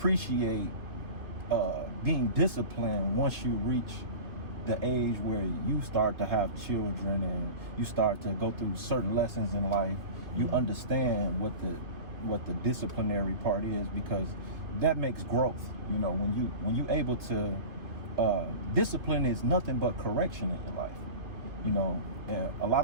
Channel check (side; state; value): left; late; 2.5 ms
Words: being disciplined once you reach the age where you start to have children and you start to go through certain lessons in life. You understand what the disciplinary part is, because that makes growth. You know, when you able to discipline is nothing but correction in your life. You know, and a lot